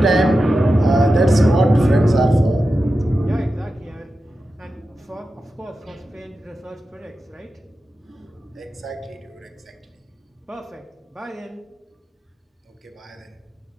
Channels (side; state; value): both; normal; correlation 0.91